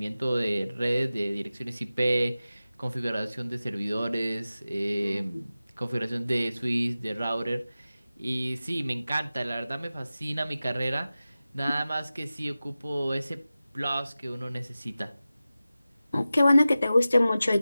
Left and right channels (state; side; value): inverted; both; correlation -0.95